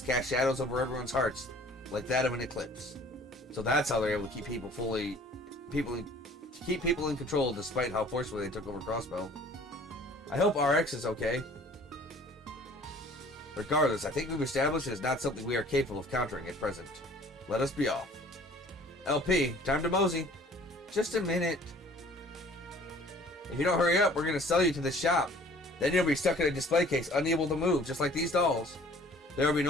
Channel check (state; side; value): normal; both; correlation 0.52